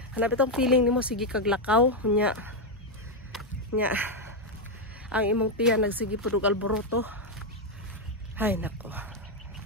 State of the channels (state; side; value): normal; both; correlation 0.03